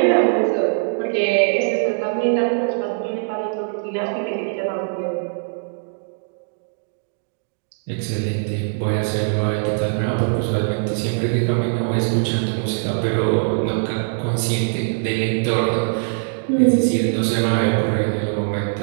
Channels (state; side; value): silent; left; digital silence